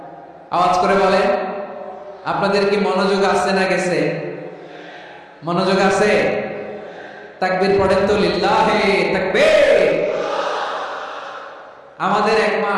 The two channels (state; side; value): identical; both; correlation 1.00